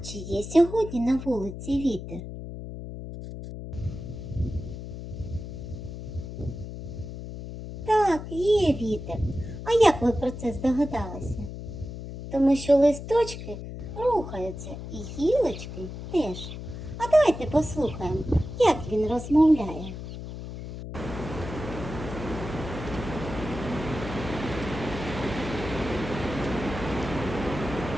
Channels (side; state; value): left; noise; hum, 9 dB below the sound